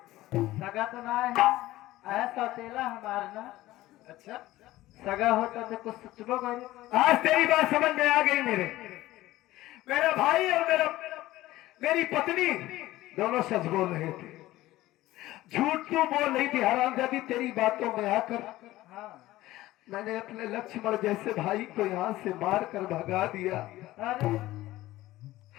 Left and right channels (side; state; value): right; quieter; 16.6 dB